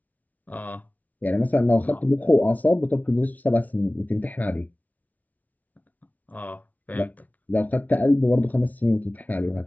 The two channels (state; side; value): late; right; 0.074 ms